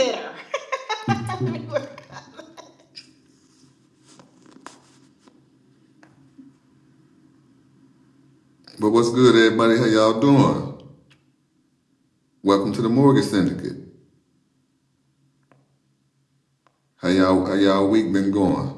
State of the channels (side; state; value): both; identical; correlation 1.00